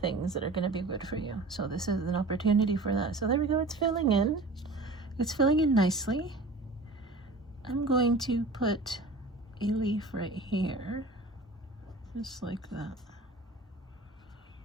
that are going to be good for you. So this is an opportunity for that. So there we go. It's filling in. It's filling in nicely. I'm going to put a leaf right here. Just like that.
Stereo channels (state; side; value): quieter; left; 3.1 dB